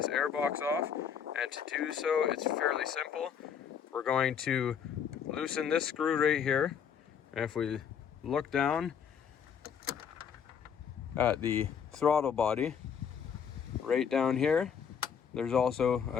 air box off, and to do so it's fairly simple. We're going to loosen this screw right here, and if we look down at the throttle body right down here, there's also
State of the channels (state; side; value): quieter; right; 7.6 dB